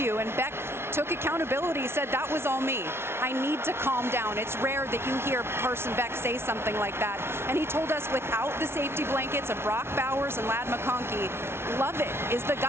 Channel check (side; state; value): left; late; 0.12 ms